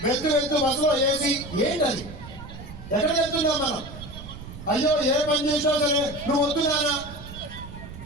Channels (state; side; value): noise; right; rumble, 13 dB below the sound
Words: వెళ్తూ బస్సులో ఏసీ. ఏంటది? ఎక్కడికి వెళ్తున్నాం మనం? అయ్యో ఏ పని చేసినా సరే నువ్వు వద్దున్నానా?